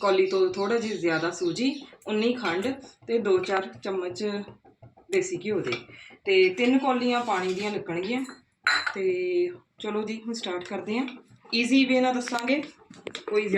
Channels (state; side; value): identical; both; correlation 1.00